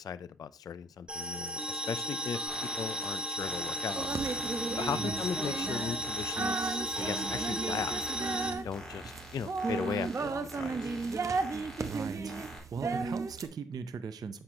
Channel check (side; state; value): both; normal; correlation 0.56